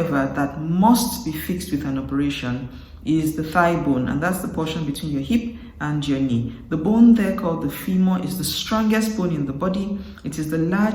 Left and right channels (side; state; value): both; identical; correlation 1.00